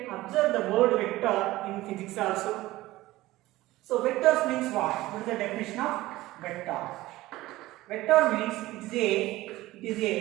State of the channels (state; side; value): quieter; left; 17.6 dB